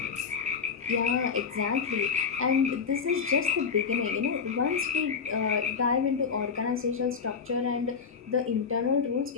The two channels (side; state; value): right; quieter; 5.9 dB